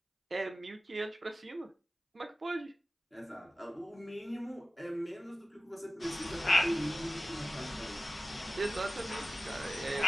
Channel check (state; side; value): normal; both; correlation 0.96